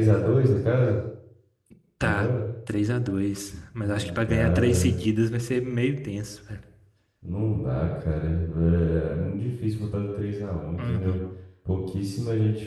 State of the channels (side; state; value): both; identical; correlation 1.00